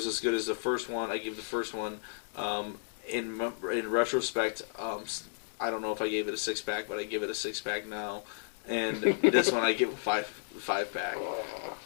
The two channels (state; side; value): silent; right; digital silence